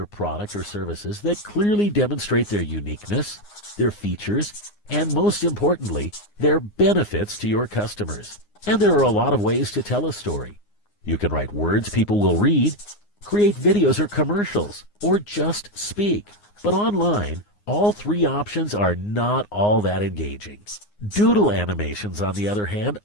product or services that clearly demonstrate their uniqueness, their features, and most importantly, their benefits to your customers. And there are a lot of ways to tell a story. You can write words people will read, create videos or commercials, or just speak. But online, all three options are not all that engaging. Doodle animations, on the other hand,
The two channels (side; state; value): right; late; 9.7 ms